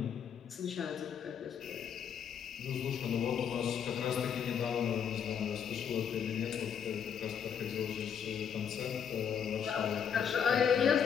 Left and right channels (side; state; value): right; quieter; 7.8 dB